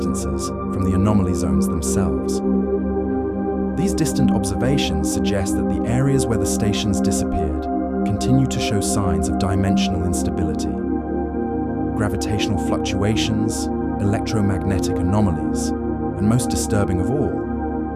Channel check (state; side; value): identical; both; correlation 1.00